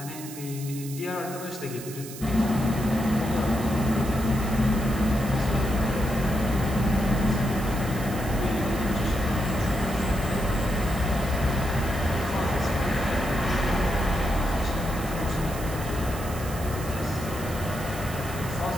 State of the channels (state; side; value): noise; right; hiss, 13 dB below the sound